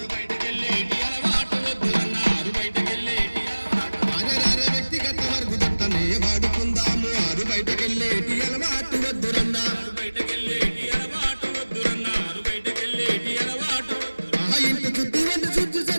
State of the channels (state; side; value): inverted; both; correlation -1.00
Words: బయటకెళ్ళేటి అలవాటు వద్దురన్నా, ఆరు బయటకెళ్ళేటి అలవాటు. అరే వ్యక్తిగత మరుగుదొడ్డనే వాడుకుందాము, ఆరు బయటకెళ్ళేటి అలవాటు వద్దురన్నా, ఆరు బయటకెళ్ళేటి అలవాటు వద్దురన్నా, ఆరు బయటకెళ్ళేటి అలవాటు. ఇంటి శుద్ధి వంటి శుద్ధి